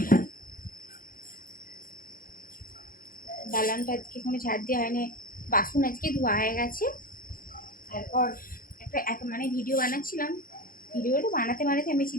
দালানটা আজকে কোনো ঝাড় দেওয়া হয়নি, বাসন আজকে ধোয়া হয়ে গেছে। তারপর একটা মানে ভিডিও বানাচ্ছিলাম, ভিডিওটা বানাতে আমি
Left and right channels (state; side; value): late; right; 0.41 ms